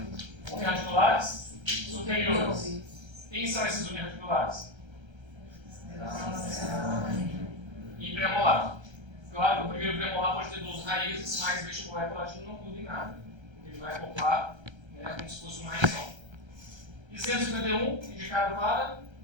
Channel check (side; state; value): left; late; 1.3 ms